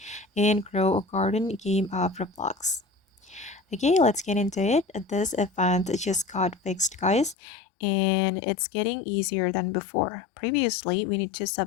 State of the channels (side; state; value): right; drops out; at 7.4 s